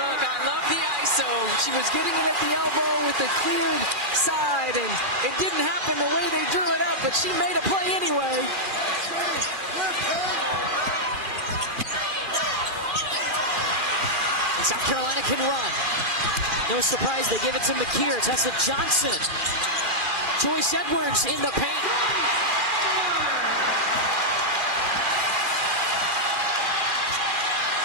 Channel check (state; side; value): late; left; 2.4 ms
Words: I love the ISO. She was getting it at the elbow with the cleared side, and it didn't happen the way they drew it up, but she made a play anyway. And South Carolina can run. No surprise, they give it to Makeer. Tessa Johnson. Joyce Edwards in the paint.